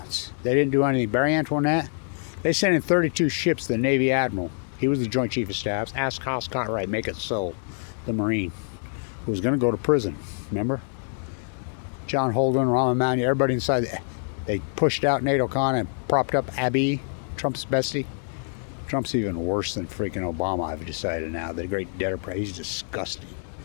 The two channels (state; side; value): silent; right; 61 dB below the other